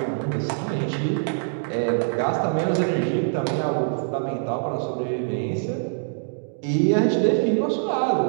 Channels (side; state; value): left; silent; digital silence